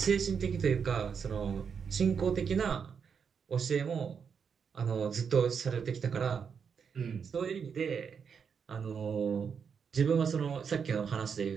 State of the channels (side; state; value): left; quieter; 6.6 dB